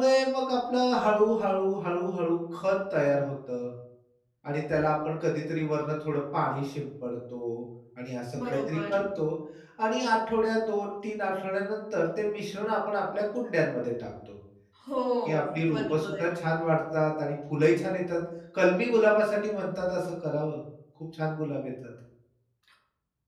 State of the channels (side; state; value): both; identical; correlation 1.00